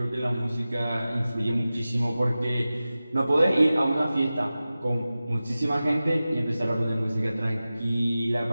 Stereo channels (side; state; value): both; inverted; correlation -0.95